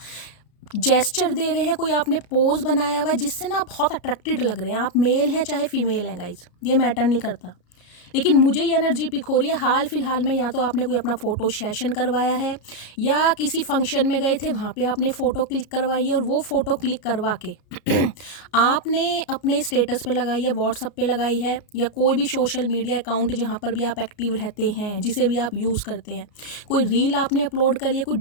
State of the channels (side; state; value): right; late; 33 ms